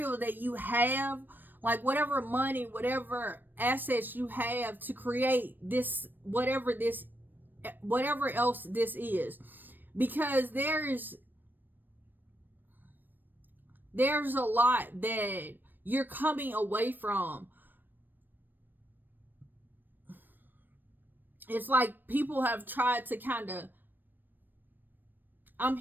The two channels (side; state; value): left; late; 0.092 ms